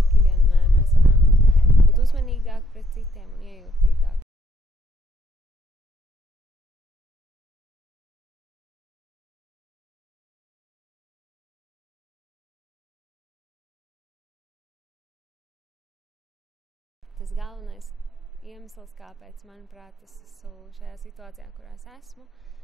vienmēr mēs varam būt uzmanīgāki pret citiem un iejūtīgāk. Tas galvenais iemesls, kāpēc, manuprāt, es esmu šajā situācijā, kurā es esmu,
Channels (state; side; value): normal; both; correlation 0.71